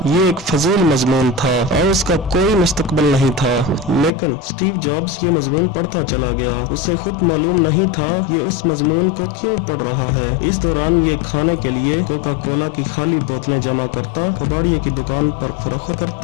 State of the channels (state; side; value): drops out; right; at 4.1 s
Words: ये एक फजील मजमून था और उसका कोई मुस्तकबिल नहीं था, लेकिन स्टीव जॉब्स ये मजमून पढ़ता चला गया। उसे खुद मालूम नहीं था ये इस मजमून को क्यों पढ़ रहा है। इस दौरान ये खाने के लिए कोका कोला की खाली बोतलें जमा करता, कबाड़िए की दुकान पर फरोख्त